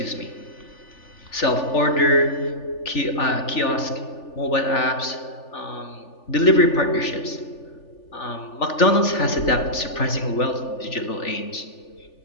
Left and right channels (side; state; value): right; late; 3.4 ms